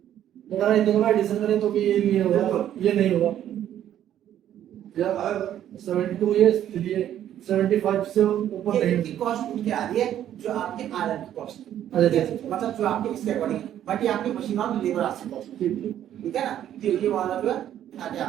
अगर इन दोनों का एडिशन करें तो भी ये नहीं होगा, ये नहीं होगा। जब 72 ये इसलिए 75 से ऊपर ये नहीं इनकी कॉस्ट उठ के आ रही है जो आपके आयरन की कॉस्ट अच्छा मतलब जो आपके इसके अकॉर्डिंग, बट ये आपकी मशीन और लेबर आती कॉस्ट, ठीक है ना। तो ये वाला जो है आगे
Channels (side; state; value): left; quieter; 11.1 dB